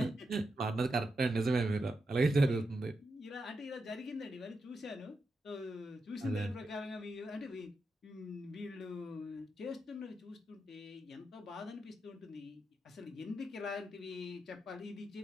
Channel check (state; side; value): normal; both; correlation 0.86